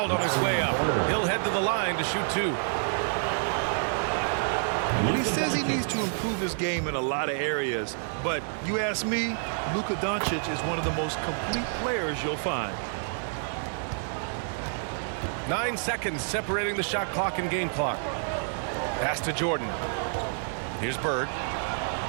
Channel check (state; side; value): silent; left; digital silence